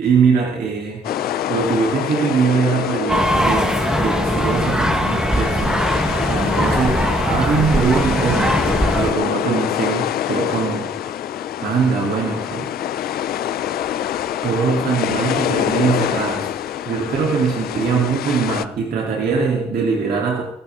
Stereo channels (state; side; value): normal; both; correlation 0.60